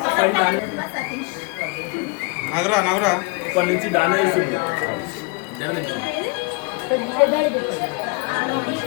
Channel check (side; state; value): right; quieter; 29.4 dB